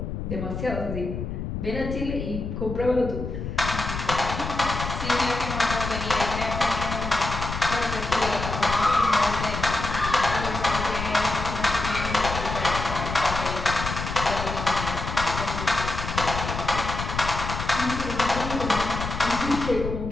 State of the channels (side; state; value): left; noise; rumble, 5 dB below the sound